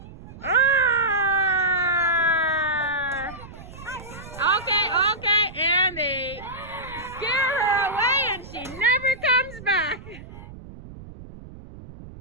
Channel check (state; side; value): noise; right; rumble, 16 dB below the sound